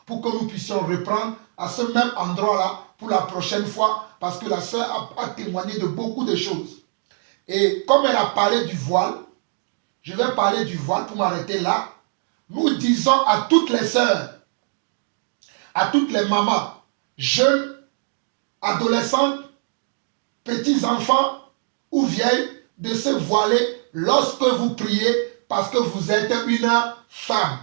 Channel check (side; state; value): left; silent; digital silence